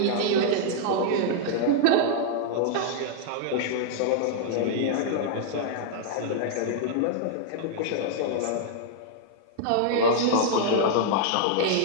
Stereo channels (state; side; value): different; both; correlation -0.01